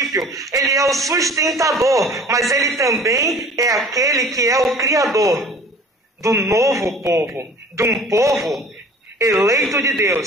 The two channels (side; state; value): both; normal; correlation 0.46